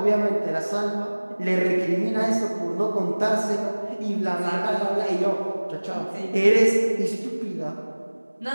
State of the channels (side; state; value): both; inverted; correlation -1.00